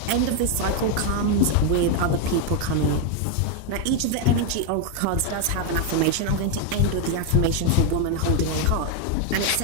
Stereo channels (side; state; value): both; different; correlation 0.01